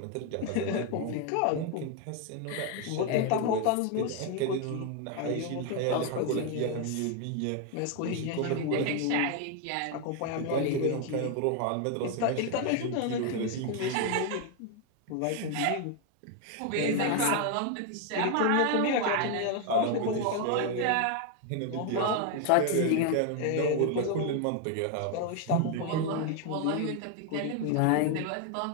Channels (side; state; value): both; different; correlation 0.01